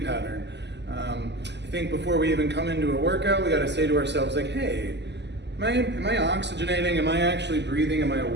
pattern. I think before we even come into a workout, we got to say to ourselves, like, hey, am I oxygenating? Am I actually breathing? Am I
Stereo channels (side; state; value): left; late; 0.50 ms